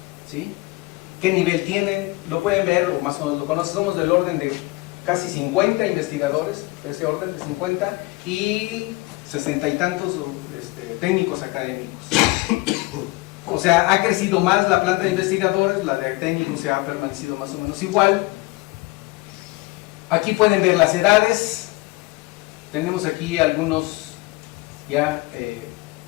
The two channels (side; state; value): right; quieter; 22.8 dB